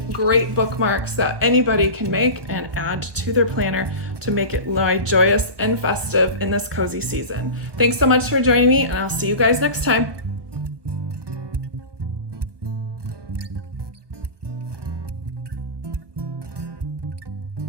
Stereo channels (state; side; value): late; left; 1.2 ms